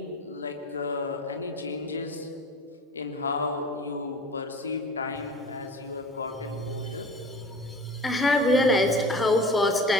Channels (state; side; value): normal; both; correlation 0.39